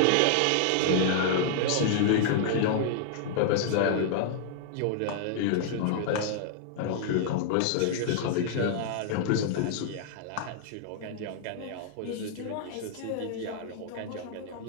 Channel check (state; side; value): different; both; correlation -0.01